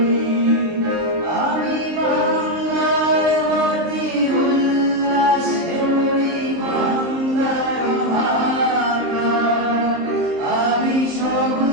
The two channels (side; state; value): left; late; 23 ms